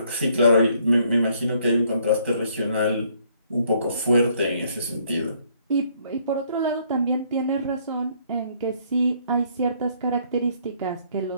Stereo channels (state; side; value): inverted; both; correlation -0.66